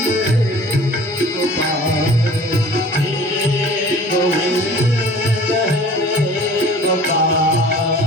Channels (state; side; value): normal; both; correlation 0.47